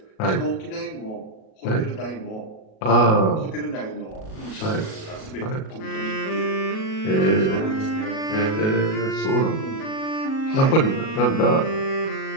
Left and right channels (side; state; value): right; late; 37 ms